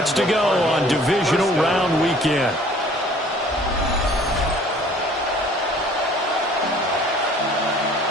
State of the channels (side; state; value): both; normal; correlation 0.53